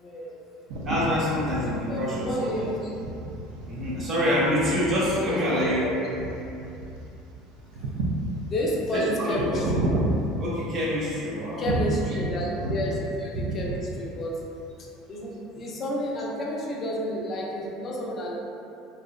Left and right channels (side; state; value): both; normal; correlation 0.41